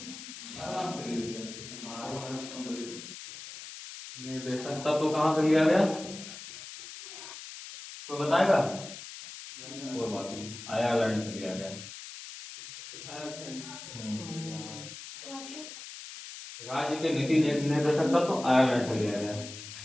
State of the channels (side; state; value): left; noise; hiss, 12 dB below the sound